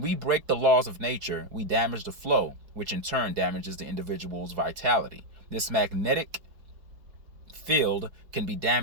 break the laws of nature, we damage the flow, which in turn damages the individual's vitality. This magnetic field can be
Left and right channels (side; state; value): left; late; 4.7 ms